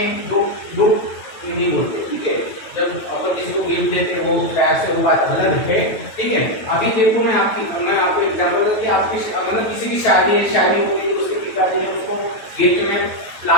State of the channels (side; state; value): right; late; 9.1 ms